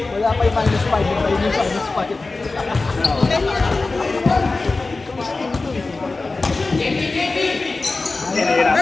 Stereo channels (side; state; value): right; quieter; 3.6 dB